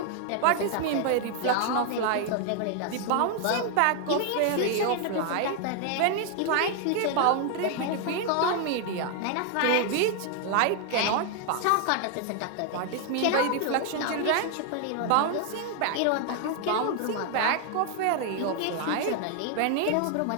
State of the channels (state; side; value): different; both; correlation 0.00